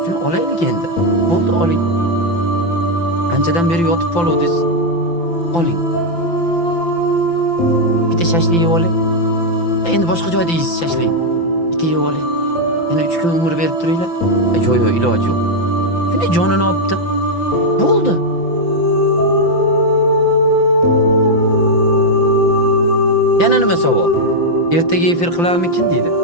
Shuni olaylik endi. Bo'ldi oling. Anchadan beri yotib qoluvdingiz. Oling. Bitta shashlik yeb oling. Endi boshqa joyda yeysiz shashlik. Bitta yeb oling. Yana 3 kun umr berib turinglar. Yo'q, iloji yo'q. Shunday jonini olibdi. Bo'ldi. Yana nima savol? Ertaga efir qilarmikin deydi.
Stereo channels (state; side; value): late; right; 5.9 ms